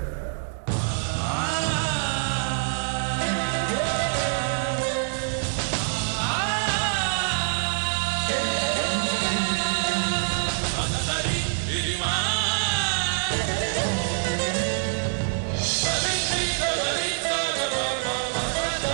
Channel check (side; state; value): left; silent; 61 dB below the other